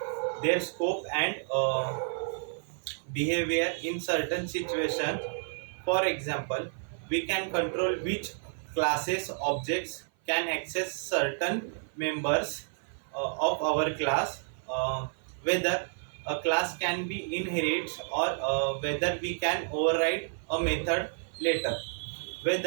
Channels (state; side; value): silent; left; 55 dB below the other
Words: their scope and behavior in certain situations. For example, we can control which classes objects can access certain members of our class, whether a class can be inherited or whether we can override a method later,